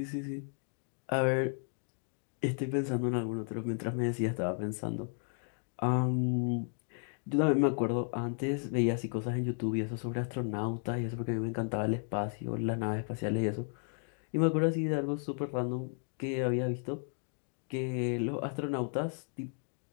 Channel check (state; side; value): silent; right; 55 dB below the other